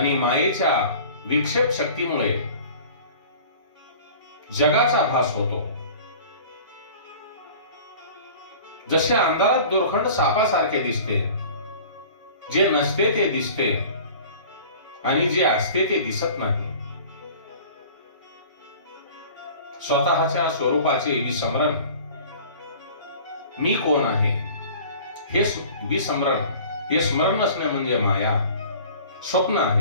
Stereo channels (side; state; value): both; inverted; correlation -0.44